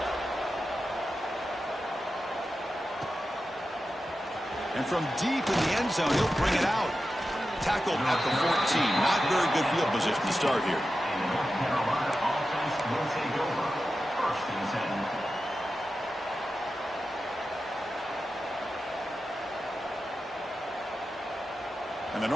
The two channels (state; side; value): normal; both; correlation 0.92